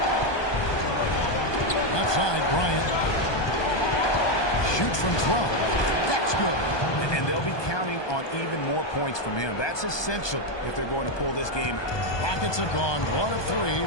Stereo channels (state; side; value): late; right; 1.2 ms